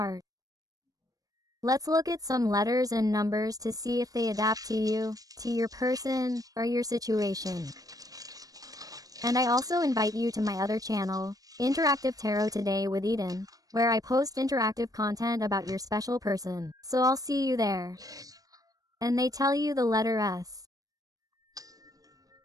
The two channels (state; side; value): late; left; 0.18 ms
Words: Let's look at some letters and numbers to see if they adapt to you, to your person, or your situation. And I also invite you to my other channel, Interactive Tarot Today with Eden, where I post interactive content about your special person. So I'll see you there. And they tell you the letter S.